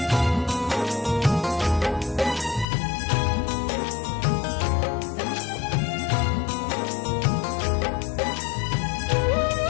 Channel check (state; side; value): drops out; right; at 2.7 s